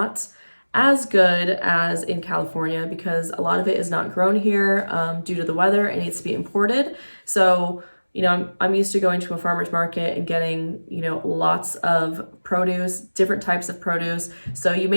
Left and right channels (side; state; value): both; inverted; correlation -1.00